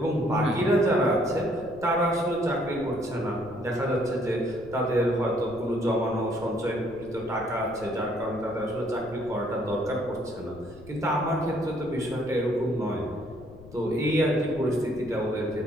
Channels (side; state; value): left; noise; rumble, 19 dB below the sound